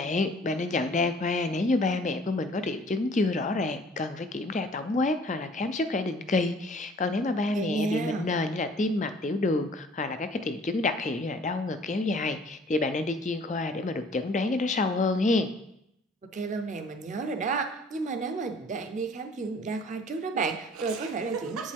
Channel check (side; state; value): both; normal; correlation 0.53